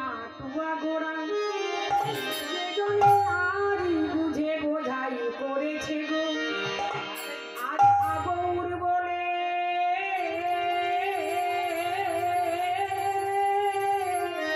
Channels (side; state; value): both; identical; correlation 1.00